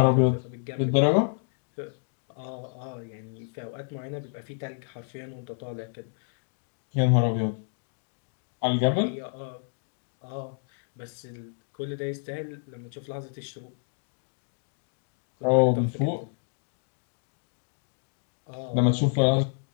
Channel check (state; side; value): silent; right; digital silence